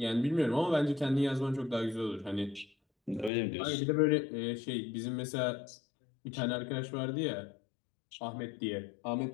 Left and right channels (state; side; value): drops out; right; at 3.3 s